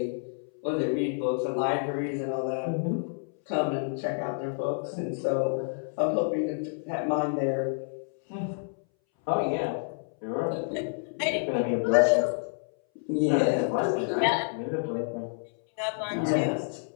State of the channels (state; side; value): silent; right; 59 dB below the other